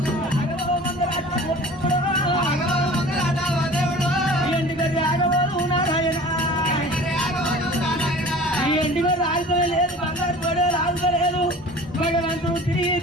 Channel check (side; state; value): both; normal; correlation 0.42